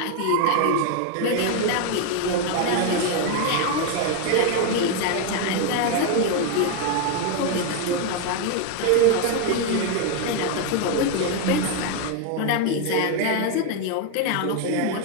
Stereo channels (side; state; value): both; different; correlation 0.01